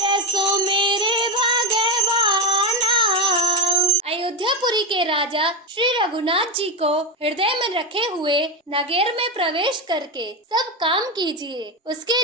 सुमिर भगवाना। अयोध्यापुरी के राजा श्री रघुनाथ जी को हृदय में रखे हुए नगर में प्रवेश करके सब काम कीजिए। उसके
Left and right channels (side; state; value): both; normal; correlation 0.12